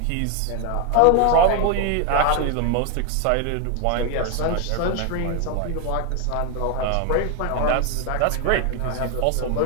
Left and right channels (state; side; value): different; both; correlation 0.01